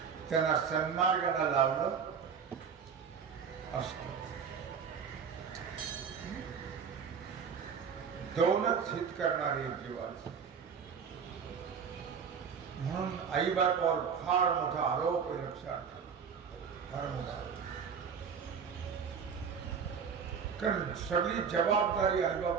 त्यांना सन्मार्गाला लावलं असतं. दोनच हित करणारे जीवाचं. म्हणून आई बापावर फार मोठा आरोप आहे, लक्षात, फार मोठा. कारण सगळी जबाबदारी आई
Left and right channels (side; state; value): left; quieter; 6.6 dB